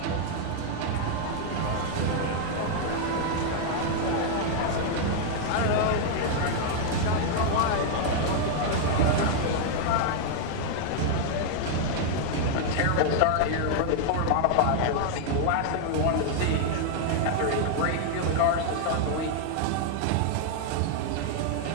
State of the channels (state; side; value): different; both; correlation 0.00